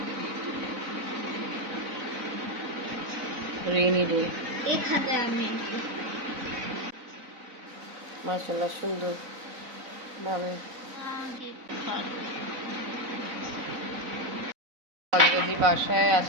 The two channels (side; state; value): left; late; 3.9 ms